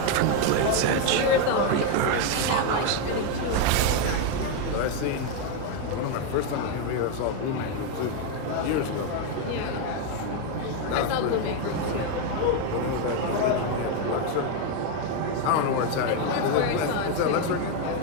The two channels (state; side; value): different; both; correlation 0.02